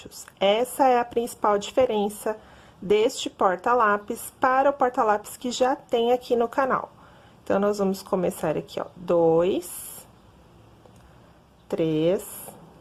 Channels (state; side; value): identical; both; correlation 1.00